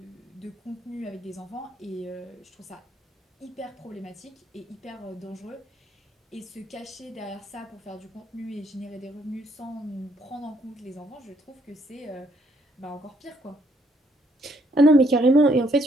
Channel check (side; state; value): both; normal; correlation 0.70